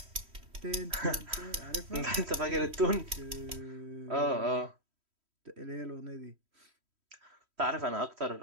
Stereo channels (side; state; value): left; late; 3.1 ms